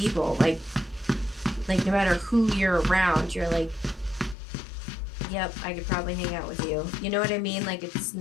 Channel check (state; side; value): drops out; right; at 4.4 s